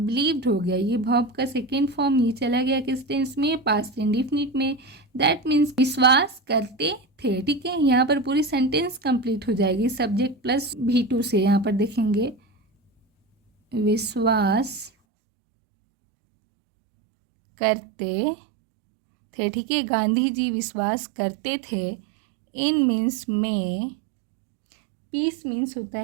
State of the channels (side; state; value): left; drops out; at 14.9 s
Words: हो गया, ये वर्ब का सेकेंड फॉर्म ये चला गया किस टेंस में, पास्ट इंडेफिनिट में। दैट मीन्स विश्वास करते थे, ठीक है। यहाँ पर पूरी सेंटेंस कंप्लीट हो जाएगी सब्जेक्ट प्लस V2 से। यहाँ पर देखेंगे विश्वास करते थे, ठीक है। गांधी जी विश्वास करते थे। इन मीन्स में, पीस मीन्स होता